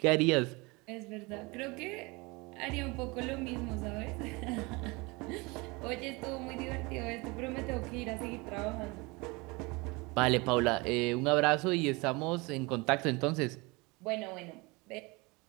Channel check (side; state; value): left; quieter; 25.7 dB